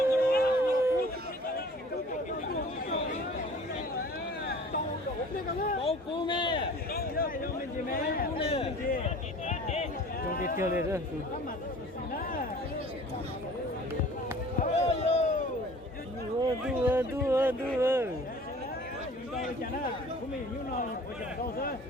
Trong cái tiêu này đó. Đua.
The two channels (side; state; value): both; normal; correlation 0.46